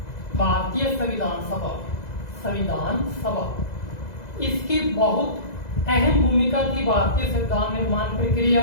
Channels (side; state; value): right; late; 2.0 ms